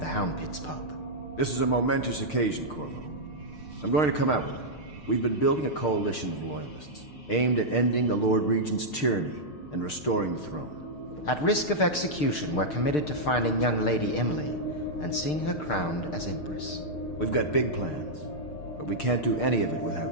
Hound Pit's pub. This is a momentous occasion, Corvo. I'm going to come out with it. We've been building a coalition of loyalists, aimed at ending the Lord Regent's tyranny and restoring the throne. At risk of execution, we're committed to finding young Lady Emily and seeing her crowned as Empress. We've got big plans, but we can't do any of it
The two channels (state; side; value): late; right; 6.6 ms